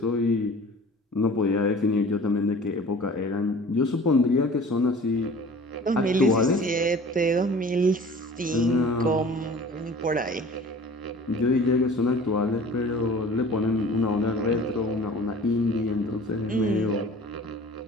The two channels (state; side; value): normal; both; correlation 0.44